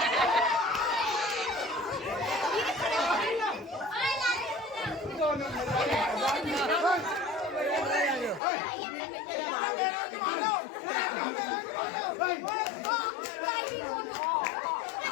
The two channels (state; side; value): drops out; right; at 8.4 s